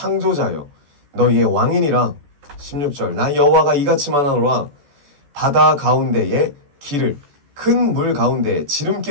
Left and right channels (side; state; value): left; late; 14 ms